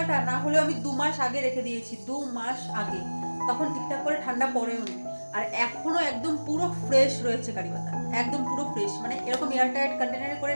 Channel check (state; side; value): inverted; both; correlation -1.00